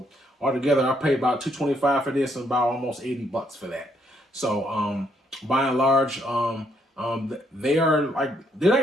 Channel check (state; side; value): normal; both; correlation 0.72